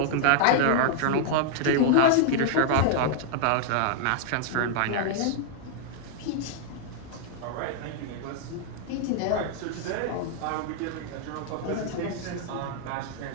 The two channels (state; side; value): different; both; correlation -0.01